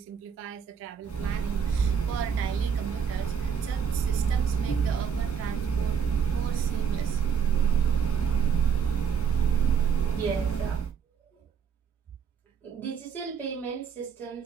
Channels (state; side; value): quieter; left; 7.1 dB